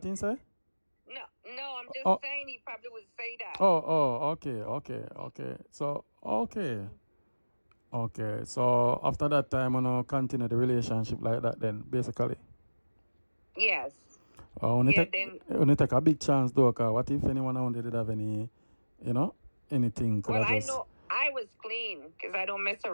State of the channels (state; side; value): inverted; both; correlation -1.00